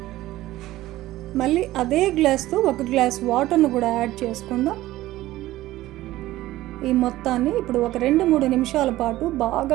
మళ్ళీ అదే గ్లాస్తో 1 గ్లాస్ వాటర్ను కూడా యాడ్ చేసుకుందాం. ఈ మొత్తాన్ని ఇప్పుడు ఒక 2-3 నిమిషాల పాటు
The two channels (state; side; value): quieter; left; 16.0 dB